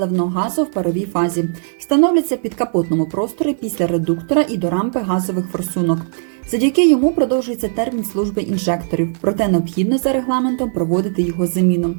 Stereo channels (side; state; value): left; silent; digital silence